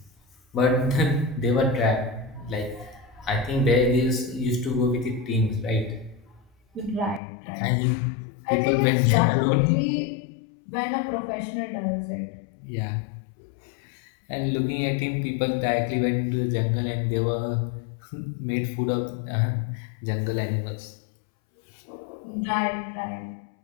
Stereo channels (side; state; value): right; drops out; at 7.2 s